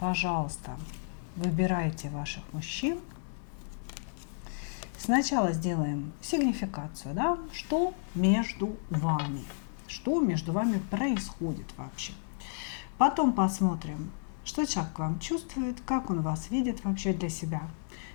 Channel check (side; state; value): right; silent; 56 dB below the other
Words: выбирайте ваших мужчин. Сначала сделаем сигнификацию, да? Что между вами? Что между вами происходит вообще? Потом посмотрим, что человек к вам чувствует, как он вас видит вообще для себя,